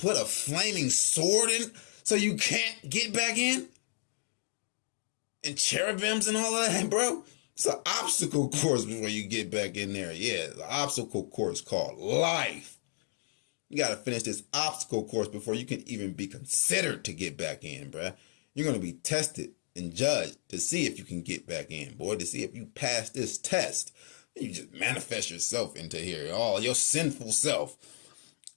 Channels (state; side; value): silent; right; digital silence